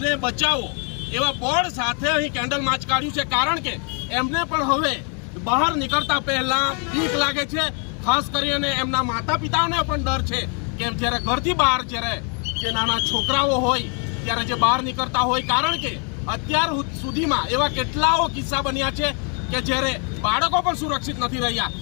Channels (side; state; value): right; quieter; 39.6 dB